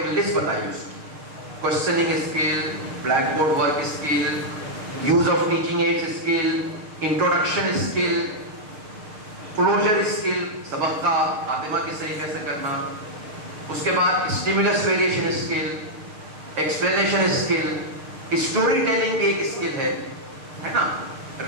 لسٹ بتائی اس کی. Questioning skill, blackboard work skill, use of teaching aids skill, introduction skill, closure skill, سبق کا خاتمہ کی صحیح کیسے کرنا, اس کے بعد stimulus variation skill, explanation skill, story telling بھی ایک اسکل ہے نا,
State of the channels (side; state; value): left; late; 6.7 ms